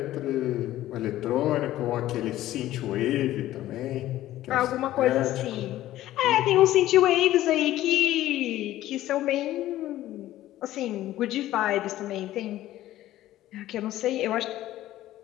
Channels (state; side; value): quieter; right; 14.5 dB